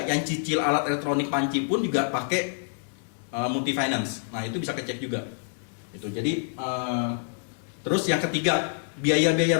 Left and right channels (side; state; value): right; silent; digital silence